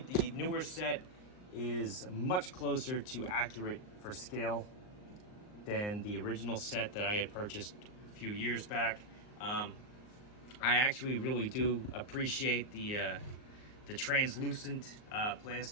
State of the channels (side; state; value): right; late; 38 ms